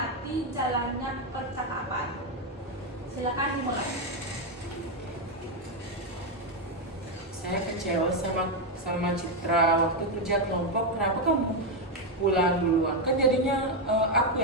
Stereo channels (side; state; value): both; normal; correlation 0.05